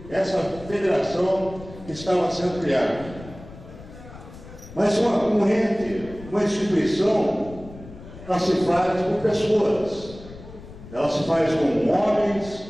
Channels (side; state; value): left; noise; rumble, 16 dB below the sound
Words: essa federação que estava sendo criada. Mas um ente, uma instituição, ela se faz por pessoas. Ela se faz com homens